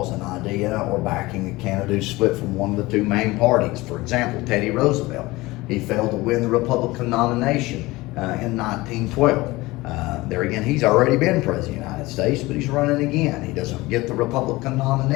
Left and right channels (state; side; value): quieter; right; 20.5 dB